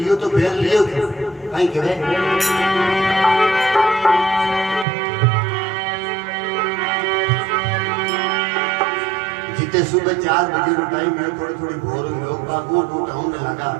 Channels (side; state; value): left; drops out; at 4.9 s